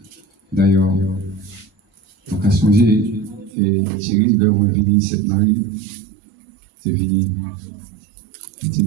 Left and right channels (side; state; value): left; drops out; at 3.5 s